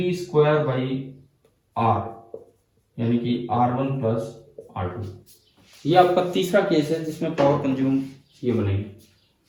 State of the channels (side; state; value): both; identical; correlation 1.00